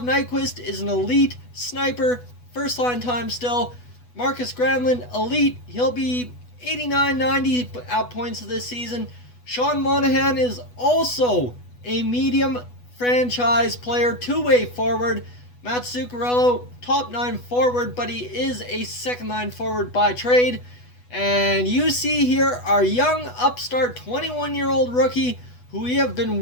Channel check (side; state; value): right; late; 8.1 ms